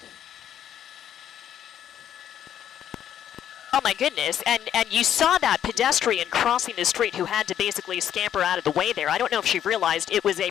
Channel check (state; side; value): quieter; right; 10.2 dB